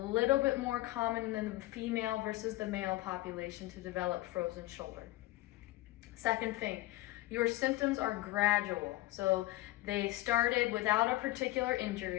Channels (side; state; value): right; quieter; 17.7 dB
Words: bit more common than the female versus the male population to develop frozen shoulder. Second thing, your symptoms are gradual. So they started without a particular